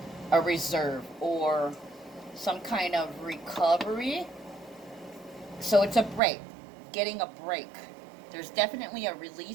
a reserve, or some kind of recovery. So it's a break, getting a break. There's definitely a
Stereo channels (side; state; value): left; drops out; at 6.2 s